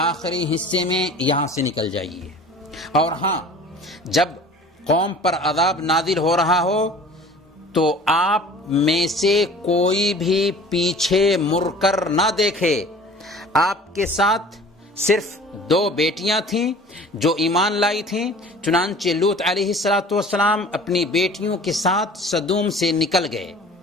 حصے میں یہاں سے نکل جائیے، اور ہاں جب قوم پر عذاب نازل ہو رہا ہو تو آپ میں سے کوئی بھی پیچھے مڑ کر نہ دیکھے. آپ کے ساتھ صرف 2 بیٹیاں تھیں جو ایمان لائی تھیں. چنانچہ لوط علیہ السلام اپنی بیٹیوں کے ساتھ سدوم سے نکل گئے.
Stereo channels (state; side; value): normal; both; correlation 0.45